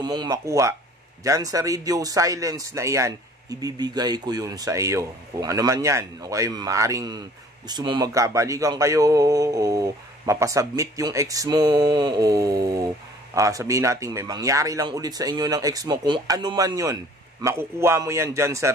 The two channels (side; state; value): both; normal; correlation 0.53